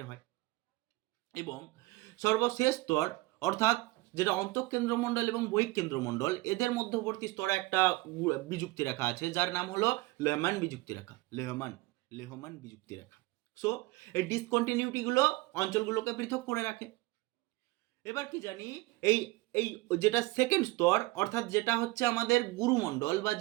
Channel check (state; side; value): quieter; left; 21.4 dB